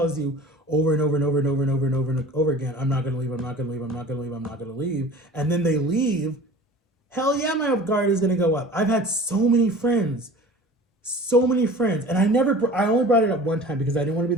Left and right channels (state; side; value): normal; both; correlation 0.42